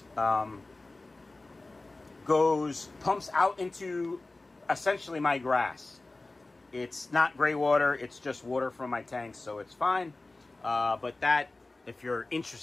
pumps out into essentially my grass. It's not gray water, it's just water from my tanks, so it's fine. But that, if you're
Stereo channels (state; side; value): quieter; right; 3.1 dB